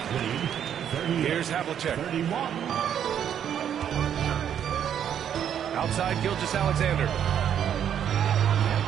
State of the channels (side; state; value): left; quieter; 9.2 dB